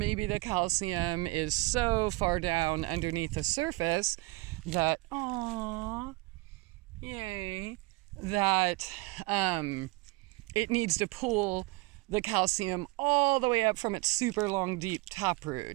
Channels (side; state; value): left; quieter; 22.6 dB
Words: the calcium is so far down underneath the surface that, that it needs to pull the calcium all the way up from its super long, deep